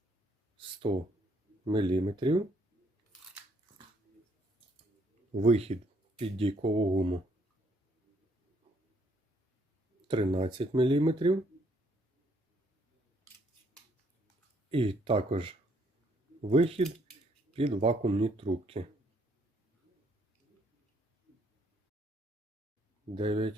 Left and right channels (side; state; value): both; normal; correlation 0.68